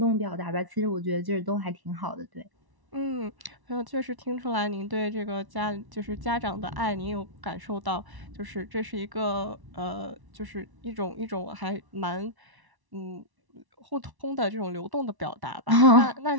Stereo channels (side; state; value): left; late; 1.1 ms